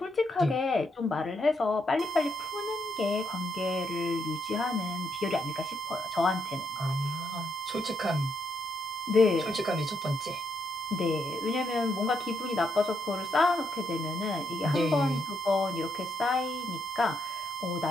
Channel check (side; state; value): both; normal; correlation 0.78